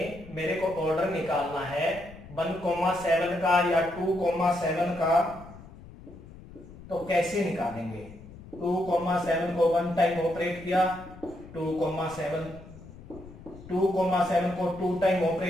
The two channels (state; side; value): noise; left; rumble, 18 dB below the sound